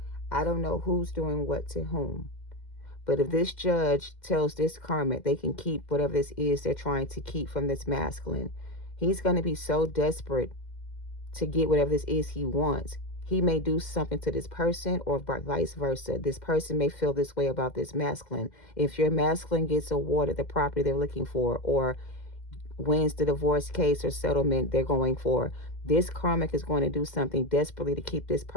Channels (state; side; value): late; right; 2.1 ms